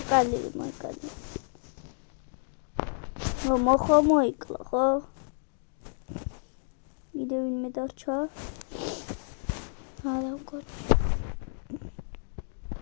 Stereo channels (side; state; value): right; silent; digital silence